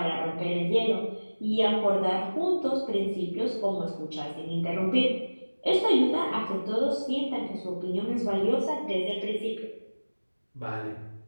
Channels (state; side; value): inverted; both; correlation -1.00